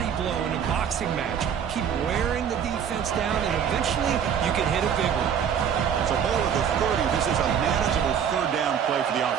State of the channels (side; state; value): left; quieter; 8.1 dB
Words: blow in a boxing match. Keep wearing the defense down, and eventually you can hit a big one. It's a ball at the 30. This is a manageable third down play for the